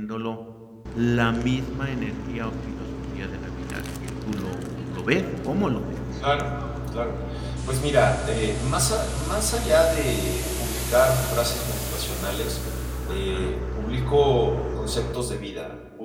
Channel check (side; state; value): both; identical; correlation 1.00